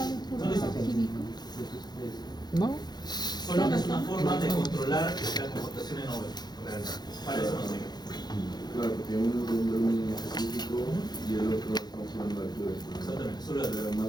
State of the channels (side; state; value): right; late; 0.20 ms